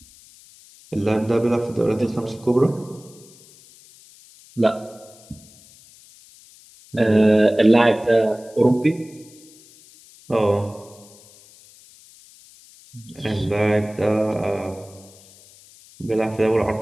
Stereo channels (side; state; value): left; noise; hiss, 24 dB below the sound